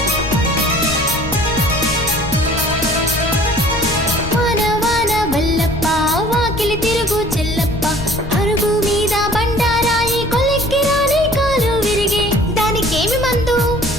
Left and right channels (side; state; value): left; noise; rumble, 11 dB below the sound